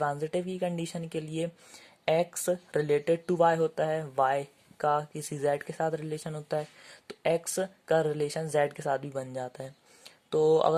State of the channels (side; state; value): both; identical; correlation 1.00